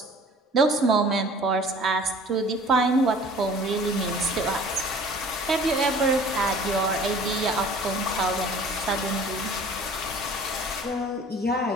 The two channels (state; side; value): normal; both; correlation 0.48